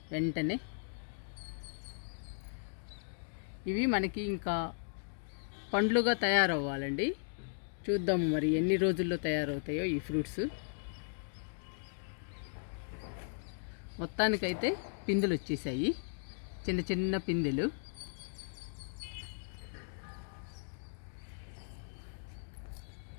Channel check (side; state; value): right; silent; digital silence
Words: వెంటనే. ఇవి మనకి ఇంకా పండ్లుగా తయారవ్వాలండి. చూద్దాము మరి ఎన్ని రోజుల్లో తయారవుతాయో ఈ ఫ్రూట్స్. మొత్తానికైతే పిందెలు వచ్చేసాయి, చిన్న చిన్న పిందెలు.